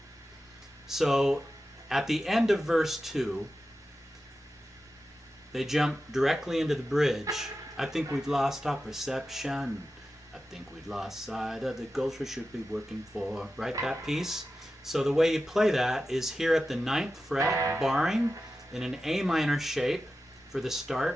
So at the end of verse 2, they jump directly into the bridge. I think we've lost our perception. I think we've lost sight of the goals we should be working for. Right, that piece? So the way you play that is here at the 9th fret, barring in an A minor shape for the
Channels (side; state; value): both; normal; correlation 0.92